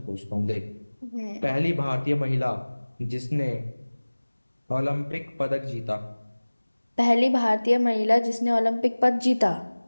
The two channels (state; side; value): inverted; both; correlation -1.00